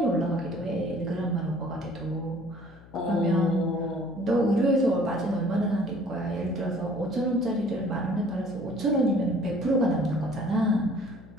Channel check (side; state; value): left; noise; hum, 22 dB below the sound